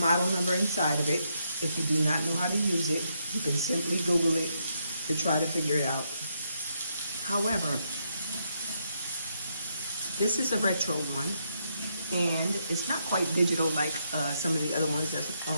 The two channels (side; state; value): both; inverted; correlation -0.78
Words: model number inside of it. If you do not know how to use it, you can simply Google it to try to figure it out. However, this is a retro one, and it's not quite digital like some of the other ones that's